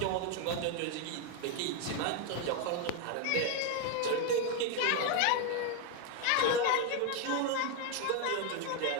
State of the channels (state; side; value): different; both; correlation 0.01